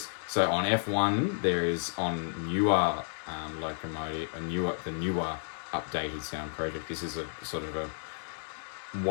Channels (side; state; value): right; silent; digital silence